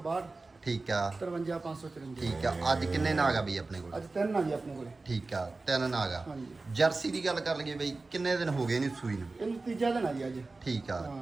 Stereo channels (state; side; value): quieter; left; 3.5 dB